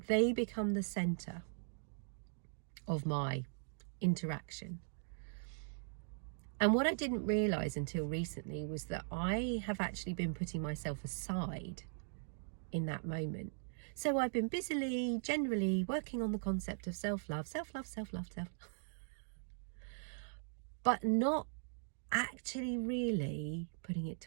they become the center of my interaction. And what I didn't realize until recently was that I have actually been putting myself aside in that moment. So I've been busily, generally working on the concept of self-love, self-love, self-love, self-love, but not actually really putting it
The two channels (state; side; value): silent; left; digital silence